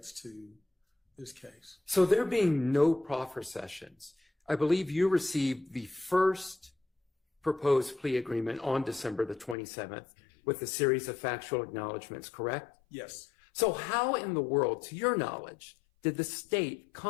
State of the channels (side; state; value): right; drops out; at 9.6 s